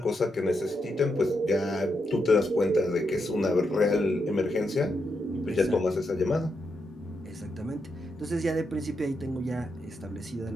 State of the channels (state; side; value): normal; both; correlation 0.83